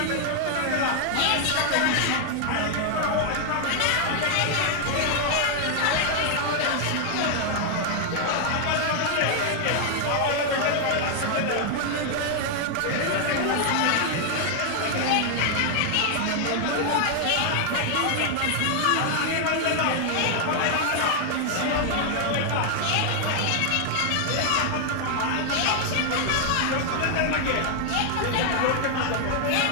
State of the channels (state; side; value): different; both; correlation 0.00